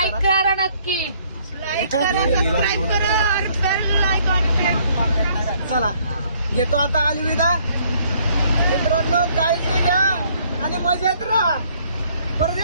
करा. करा नक्की. चला घेतो आता अलविदा. मित्रांनो काळजी घ्या आणि मजेत राहा. परत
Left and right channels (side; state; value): both; inverted; correlation -0.64